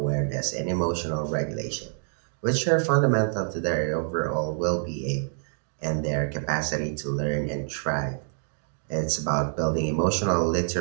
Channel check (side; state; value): left; silent; digital silence